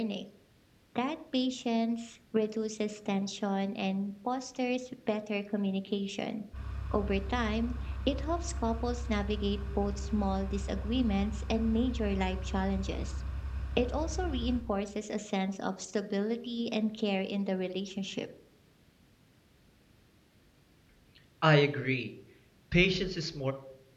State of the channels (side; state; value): both; identical; correlation 1.00